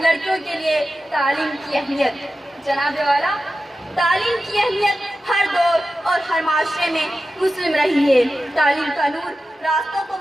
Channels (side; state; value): both; normal; correlation 0.93